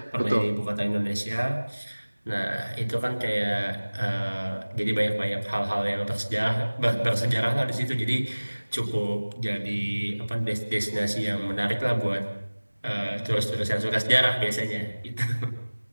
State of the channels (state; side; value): inverted; both; correlation -1.00